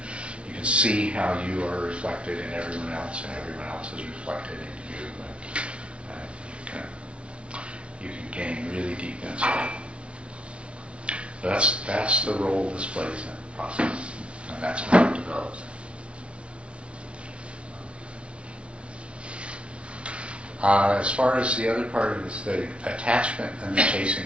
can see how you are reflected in everyone else, and everyone else is reflected in you. You can gain really deep insight. That's the role this plays in the process, and that's how it develops. As far as the other part of this, the attachment and the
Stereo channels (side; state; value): left; late; 0.060 ms